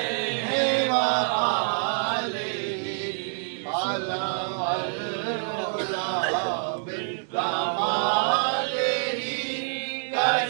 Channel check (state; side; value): silent; left; digital silence